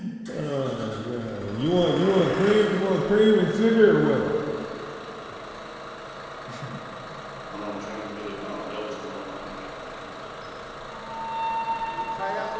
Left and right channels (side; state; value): both; identical; correlation 1.00